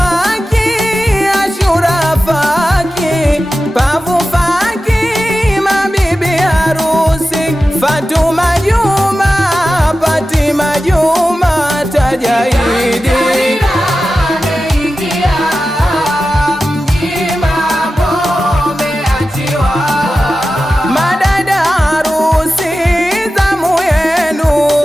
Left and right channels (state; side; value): normal; both; correlation 0.93